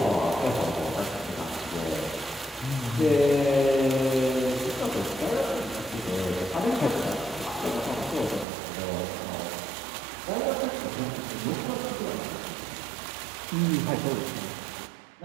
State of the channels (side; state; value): left; drops out; at 8.5 s